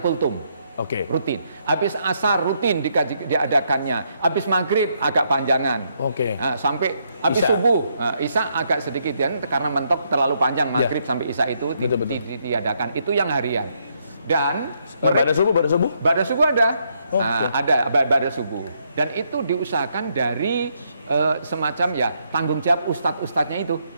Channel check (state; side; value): inverted; both; correlation -0.75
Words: kultum. Rutin. Habis asar rutin diadakannya. Habis maghrib agak panjangan. Nah, sampai habis subuh, isya agak sedikit karena mentok terlalu panjang maghrib sampai isya itu diadakan. Itu yang harian. Dan pada subuh ada. Ada pada subuh. Dan itu diusahakan dari semacam tanggung jawab ustadz-ustadznya itu.